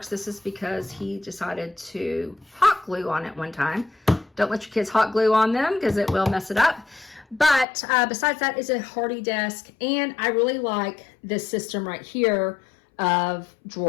This is because he decided to hot glue on it one time. Don't let your kids hot glue on them because it will mess it up. But besides that, it's a hardy desk, and I really like this system right here of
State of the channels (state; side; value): drops out; right; at 7.7 s